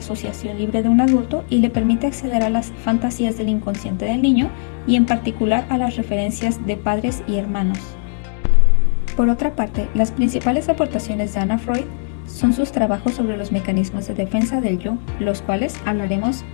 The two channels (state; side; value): silent; right; digital silence